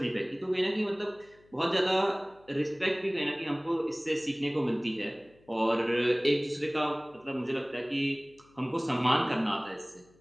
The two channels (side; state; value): left; noise; hum, 30 dB below the sound